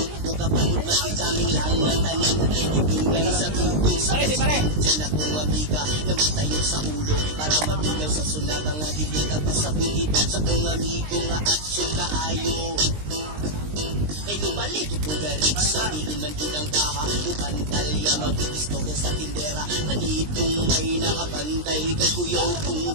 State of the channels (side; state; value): left; late; 20 ms